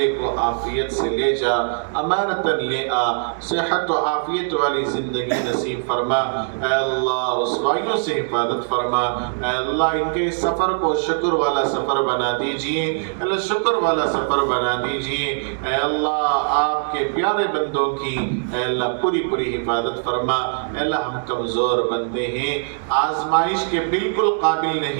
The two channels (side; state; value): left; silent; digital silence